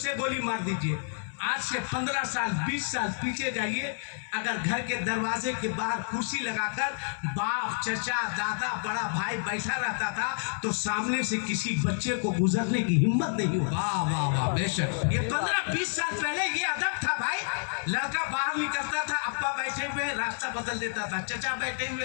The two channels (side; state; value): right; silent; 58 dB below the other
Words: गोली मार दीजिए। आज से 15 साल 20 साल पीछे जाइए, अगर घर के दरवाजे के बाहर कुर्सी लगाकर बाप, चचा, दादा, बड़ा भाई बैठा रहता था तो सामने से किसी बच्चे को गुजरने की हिम्मत नहीं हुई। वाह वाह वाह, बेशक। ये 15-20 साल पहले ये अदब था भाई। लड़का बाहर निकलता था, अब्बा बैठे हुए रास्ता बदल देता था, चचा बैठे हुए